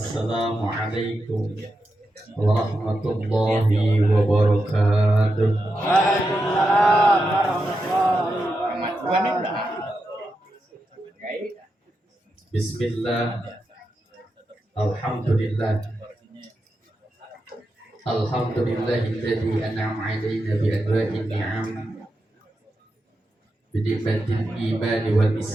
warahmatullahi wabarakatuh. Waalaikumsalam warahmatullahi wabarakatuh. Bismillah. Alhamdulillah. Alhamdulillahilladzi an'ama 'alaina bi anwa'in ni'am bi ni'matil iman wal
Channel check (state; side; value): normal; both; correlation 0.87